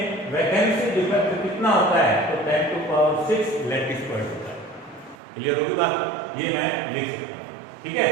वैकेंसी डिफेक्ट कितना होता है? तो 10 टू पावर 6 लैटिस पॉइंट होता है। क्लियर होगी बात? ये मैं लिख सकता हूं, ठीक है?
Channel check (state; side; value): drops out; left; at 5.2 s